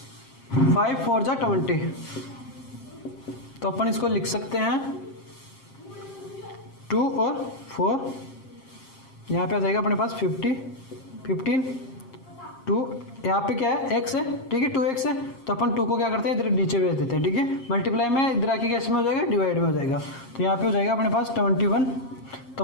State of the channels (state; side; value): late; right; 7.5 ms